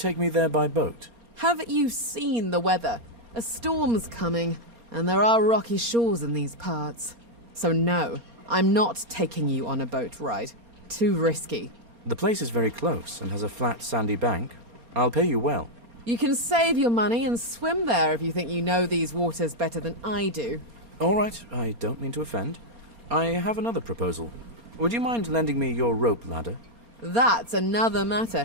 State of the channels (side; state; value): left; late; 4.3 ms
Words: me there by boat? Haven't you seen the weather? A storm's coming, and there are rocky shores in these parts. So no, I'm not taking you on a boat ride. Too risky. The place is very close and has a flat, sandy bank. I'll pay you well. You can save your money and swim there if you think you know these waters better than I do. All right, I don't mean to offend. I have another proposal. Would you mind lending me your rope ladder? That's another